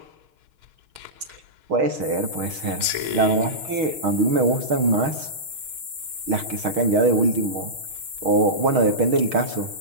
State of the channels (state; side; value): late; left; 6.4 ms